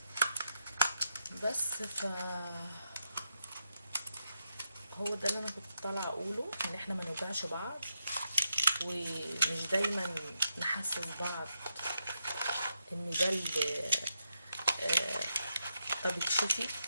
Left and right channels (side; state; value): both; inverted; correlation -0.82